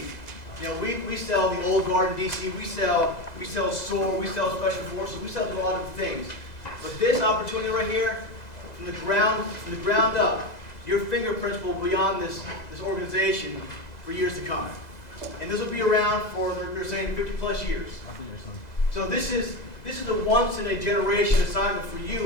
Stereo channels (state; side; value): late; right; 2.0 ms